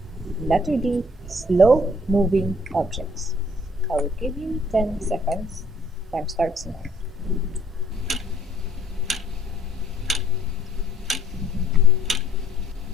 Letter D, slow moving objects. I will give you 10 seconds Time starts now.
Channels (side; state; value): both; normal; correlation 0.61